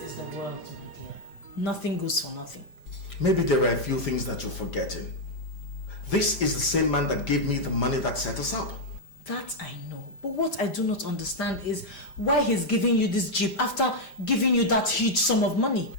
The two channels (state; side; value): late; right; 5.0 ms